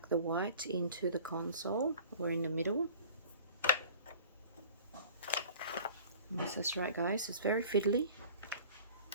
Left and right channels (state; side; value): inverted; both; correlation -0.46